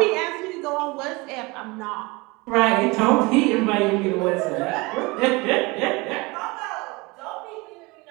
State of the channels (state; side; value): quieter; left; 24.9 dB